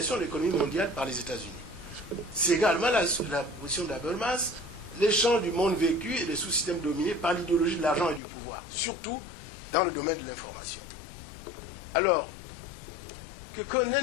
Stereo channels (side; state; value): right; drops out; at 8.2 s